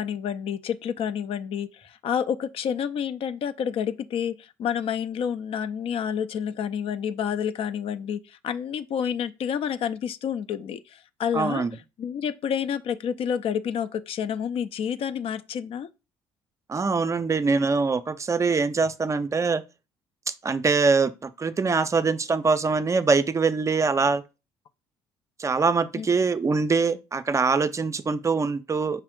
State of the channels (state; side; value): normal; both; correlation 0.62